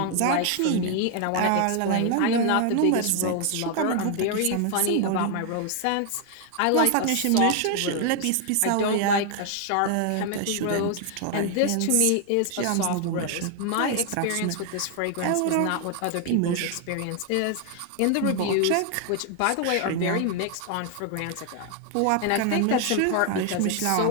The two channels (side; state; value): both; different; correlation 0.00